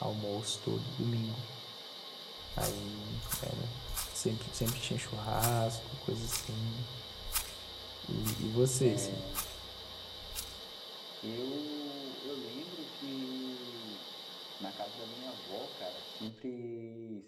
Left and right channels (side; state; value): both; identical; correlation 1.00